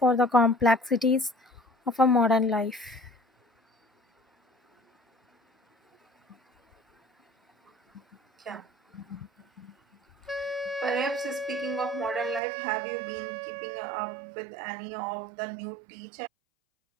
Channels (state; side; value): drops out; left; at 12.4 s